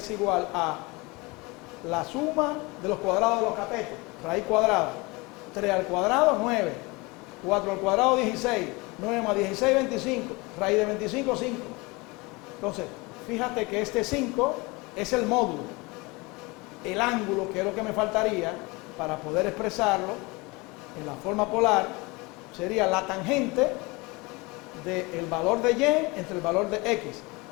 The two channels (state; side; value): quieter; right; 25.1 dB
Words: igual a la suma de los cuadrados de los catetos, raíz cuadrada. 3 al cuadrado, 9. 4 al cuadrado, 16. 9 más 16, 25. Raíz de 25, 5. Entonces, fíjate que este 5 es el módulo. El ángulo, que es lo que me faltaría para poder expresarlo en la forma polar, sería la tangente del valor de Y entre el valor de X.